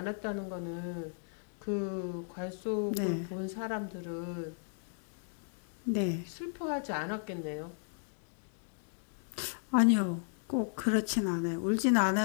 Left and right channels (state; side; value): silent; right; digital silence